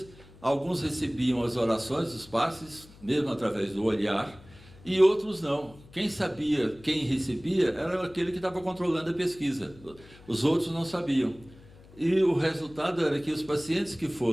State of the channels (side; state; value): left; noise; hum, 22 dB below the sound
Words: alguns recebiam as orações, os passes, mesmo através do olhar, e outros não. Quem sabia, quem recebia, era aquele que estava controlando a pesquisa. Os outros não sabiam. E o resultado era que os pacientes que